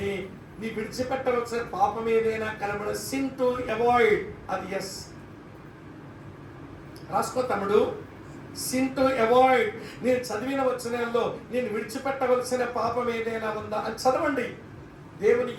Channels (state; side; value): identical; both; correlation 1.00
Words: నీ విడిచిపెట్టవలసిన పాపం ఏదైనా కనబడ, సిన్ టు అవాయిడ్, అది ఎస్. రాసుకో తమ్ముడు. సిన్ టు అవాయిడ్, నేను చదివిన వచనాల్లో నేను విడిచిపెట్టవలసిన పాపం ఏదైనా ఉందా అని చదవండి. దేవుని